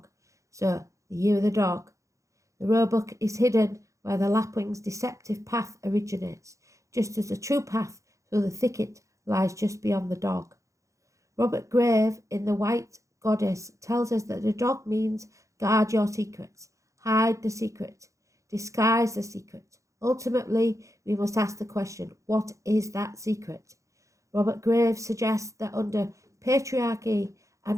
So, the year of the dog. The roebuck is hidden where the lapwing's deceptive path originates, just as the true path through the thicket lies just beyond the dog. Robert Grave, in The White Goddess, tells us that the dog means guard your secrets, hide the secret, disguise the secret. Ultimately, we must ask the question, what is that secret? Robert Graves suggests that under patriarchy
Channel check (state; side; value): late; left; 0.15 ms